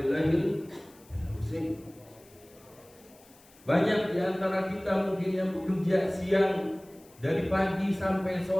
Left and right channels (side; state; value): left; noise; hiss, 27 dB below the sound